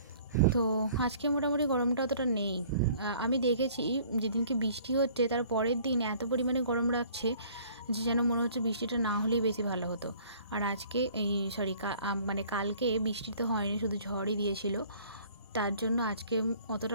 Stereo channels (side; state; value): both; inverted; correlation -0.54